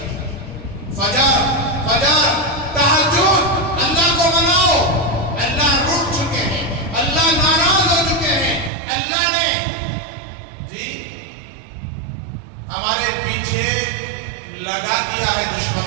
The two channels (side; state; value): left; drops out; at 8.7 s